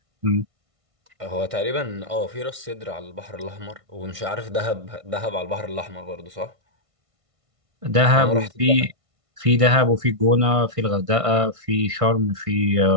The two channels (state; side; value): late; left; 1.5 ms